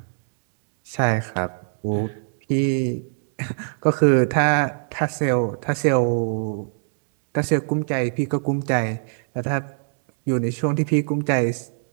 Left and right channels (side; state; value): left; silent; digital silence